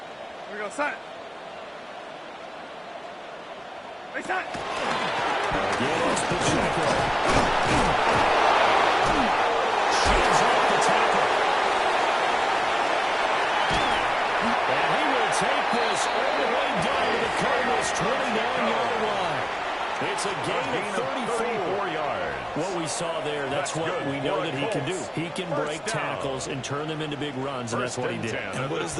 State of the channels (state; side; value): identical; both; correlation 1.00